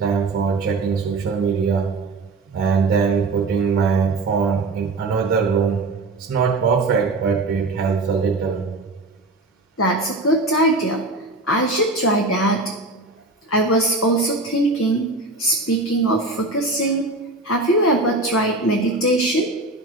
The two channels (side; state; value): left; quieter; 3.1 dB